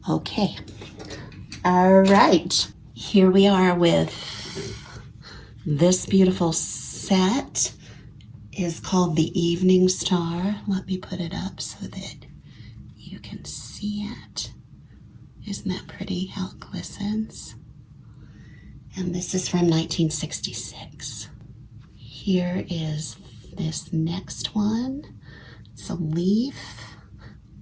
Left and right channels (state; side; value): identical; both; correlation 1.00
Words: Okay. All right. Here we are with this beautiful set. Is called the Evening Star. Let me put it up so that you can see it. Isn't that pretty how it glistens? And this is from 1966. Here is this next one. It's a leaf